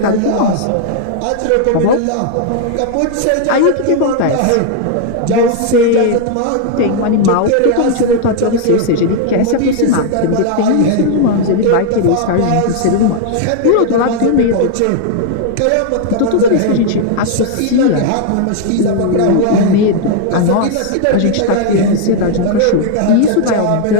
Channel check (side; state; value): both; different; correlation 0.00